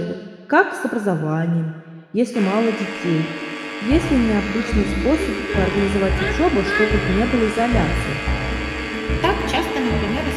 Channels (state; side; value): identical; both; correlation 1.00